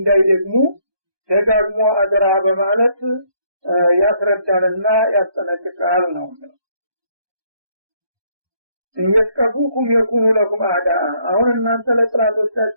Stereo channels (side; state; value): left; late; 1.2 ms